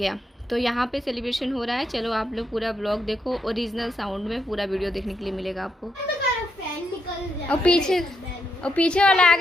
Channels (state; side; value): normal; both; correlation 0.80